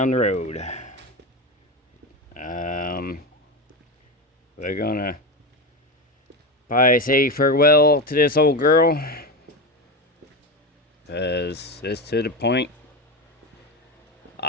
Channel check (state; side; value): normal; both; correlation 0.18